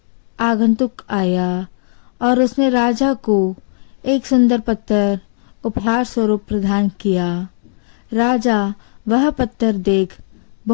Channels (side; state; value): right; silent; 68 dB below the other